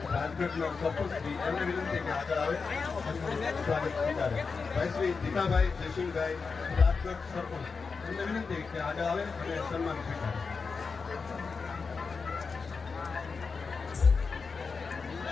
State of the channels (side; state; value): right; quieter; 4.9 dB